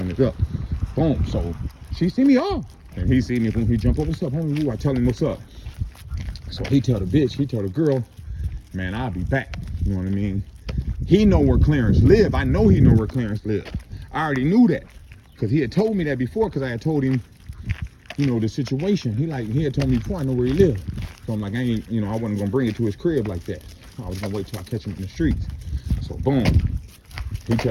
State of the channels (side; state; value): both; identical; correlation 1.00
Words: it up. Boom. So she see me off, and he see me. Boom. He jump up. What's up, homie? Ooh, I tell him what's up. So he tell the girl, man, I'll be back. You know what I mean? He know where Clarence live. I know he know where Clarence live. I already knew that, because he had told me that before, because I had told him, you know, the situation. He had told me before, I know where he lived. So I'm like, I wasn't gonna bring it to his crib like that. I was gonna wait till I catch him in the streets. So boom, he